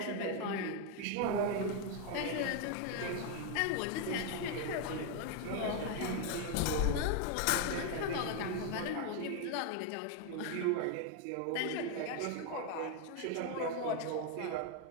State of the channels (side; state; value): both; different; correlation 0.01